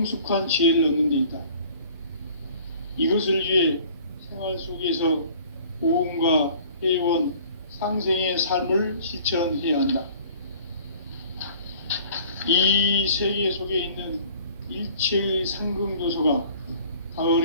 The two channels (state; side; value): inverted; both; correlation -0.51